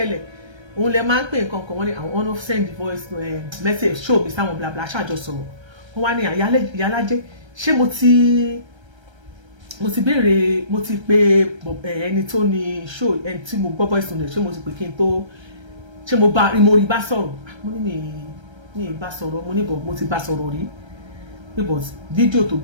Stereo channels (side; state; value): left; late; 1.3 ms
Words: òun lè máa ń pè nǹkan kan wọ́n ní àwọn of send voice message show mi sáwọn bla bla ṣáàjọ sọ̀rọ̀ wọ́n wá ní ìyálájẹ́ ṣé mo ti béèrè mo ti pe ẹni tó ní show ẹni tí mo gbọ́ voice note ṣé mo ti pè kí n tó ṣé mo rí bá sọ̀rọ̀ mo ní mi bá sọ̀rọ̀ mo ní bọ̀ mo ti bá sọ̀rọ̀ rí but fídíò tó